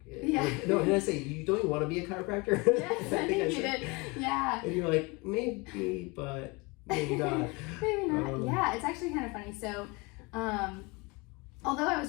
Yeah. No, didn't I say, you don't you want to be a chiropractor? Yes, I think you did. Yeah. And you're like, maybe, but maybe not. Maybe not. Yeah, it's actually kind of funny. So, although I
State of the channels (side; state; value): right; quieter; 26.9 dB